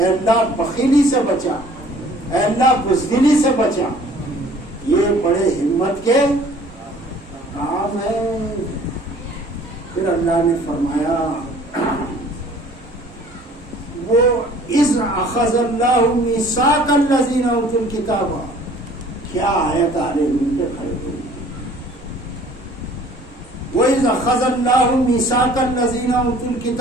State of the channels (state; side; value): normal; both; correlation 0.53